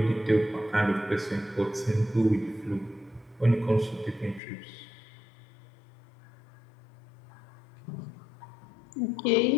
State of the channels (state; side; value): drops out; right; at 4.4 s